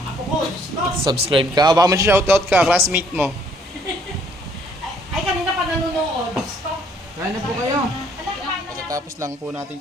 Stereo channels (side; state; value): both; normal; correlation 0.64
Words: apo ko. Subscribe ka. Baka mag-shoutout ka, classmate mo. Ay, kanina pa nanonood. Kain na po kayo. Pagkatapos lang po natin